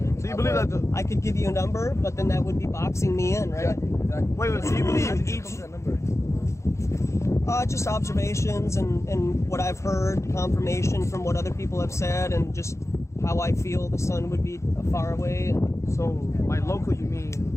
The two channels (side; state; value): right; late; 0.14 ms